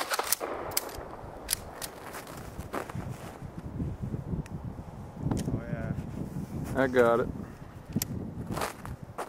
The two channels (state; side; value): identical; both; correlation 1.00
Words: I got it.